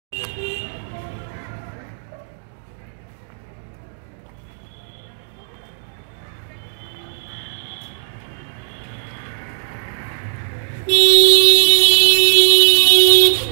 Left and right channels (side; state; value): left; silent; digital silence